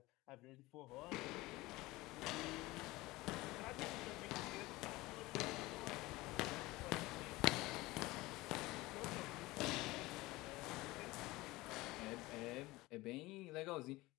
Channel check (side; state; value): right; quieter; 20.1 dB